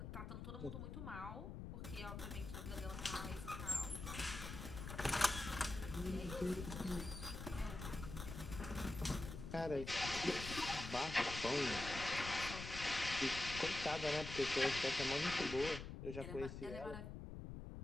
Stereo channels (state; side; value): noise; left; rumble, 8 dB below the sound